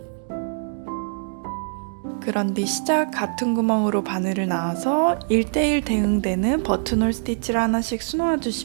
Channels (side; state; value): left; silent; digital silence